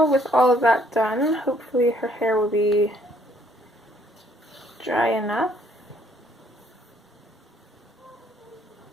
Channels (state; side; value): normal; both; correlation 0.65